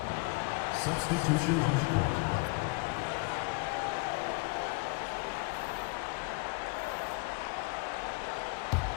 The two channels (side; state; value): right; quieter; 28.8 dB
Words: Substitution on the court.